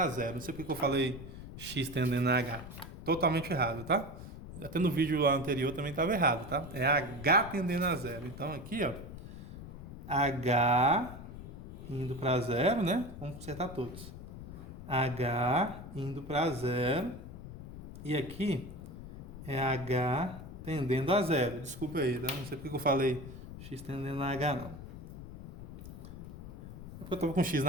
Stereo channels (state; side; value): noise; left; rumble, 12 dB below the sound